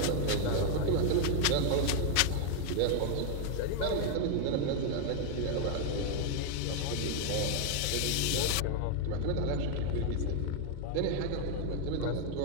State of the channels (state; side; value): different; both; correlation 0.00